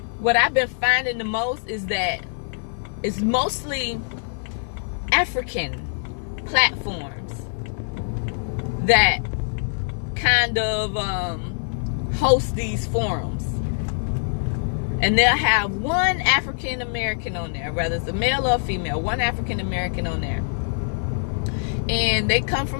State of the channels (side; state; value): right; silent; digital silence